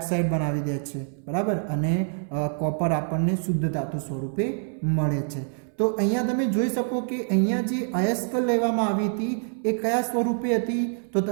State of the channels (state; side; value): silent; left; 61 dB below the other